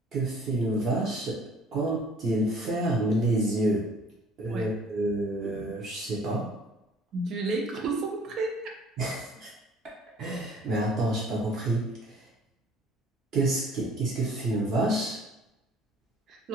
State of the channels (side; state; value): both; normal; correlation 0.54